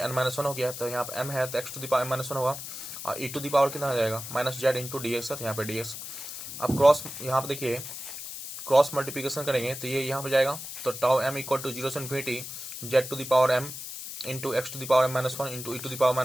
माइनस 1 हो गया, तो यहाँ पे एम है तो x to the power m minus 1 होगा, और ई टू द पावर कितना आ जाएगा, minus Z into d x है, तो यहाँ पे डी एक्स। अब क्रॉस, यहाँ पे देखिए क्रॉस मल्टीप्लिकेशन करेंगे तो ये यहाँ पे जाएगा, तो टाउ एम इक्वल टू 0 से infinity z to the power m into x to the power m minus 1 into e to the power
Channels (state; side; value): noise; left; hiss, 9 dB below the sound